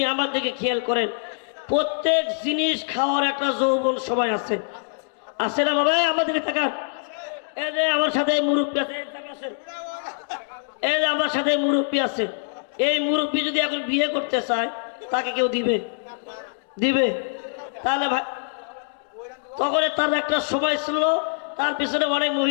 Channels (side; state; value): right; silent; digital silence